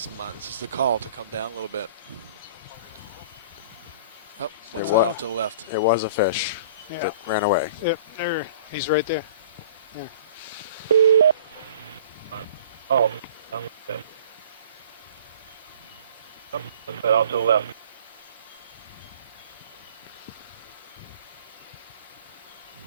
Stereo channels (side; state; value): both; inverted; correlation -0.47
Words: the call to come down a little bit. Oh, what's that off to the left? It was a fish Yeah. that ran away. Yep, there. He's right there. Oh, what's that off to the left?